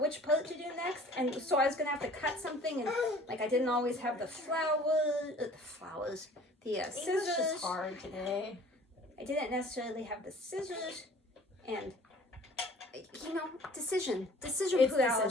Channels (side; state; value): both; normal; correlation 0.49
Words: part to do next, and so I was gonna have to cut something, and like I didn't always have the scissors. English is hard today. I didn't necessarily have the scissors, and decision